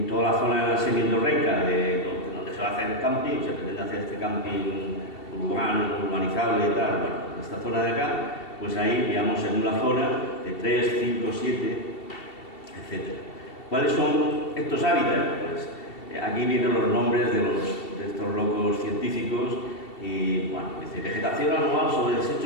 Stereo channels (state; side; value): late; right; 2.7 ms